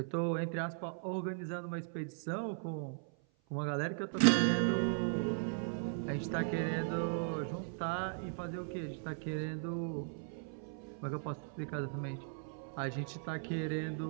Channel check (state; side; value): silent; left; 53 dB below the other